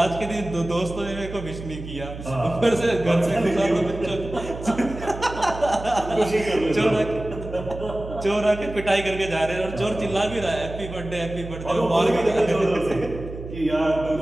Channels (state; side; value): noise; right; hum, 11 dB below the sound